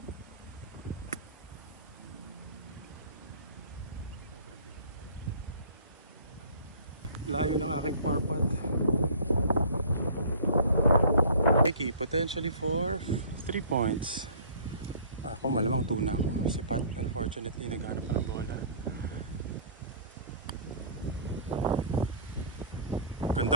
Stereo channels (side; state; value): both; inverted; correlation -0.47